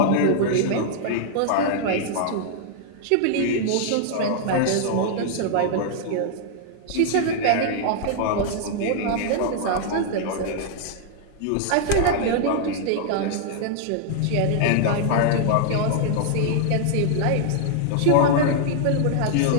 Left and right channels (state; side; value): different; both; correlation -0.01